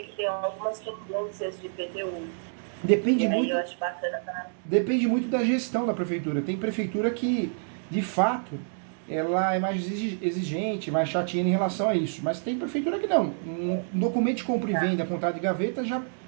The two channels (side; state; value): left; silent; digital silence